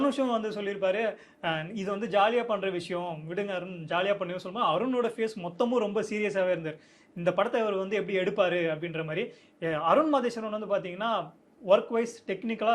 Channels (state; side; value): identical; both; correlation 1.00